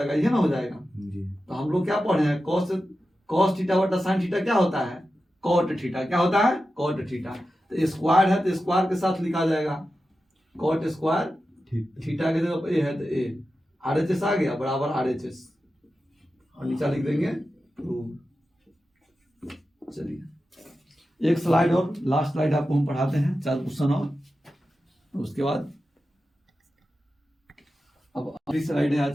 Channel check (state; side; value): normal; both; correlation 0.92